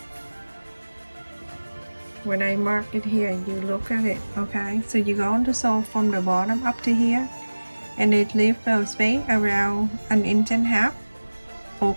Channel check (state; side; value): inverted; both; correlation -1.00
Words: when I mark it here, you look at it, okay? So you're going to sew from the bottom up to here, and it leaves the space around 1.5 inches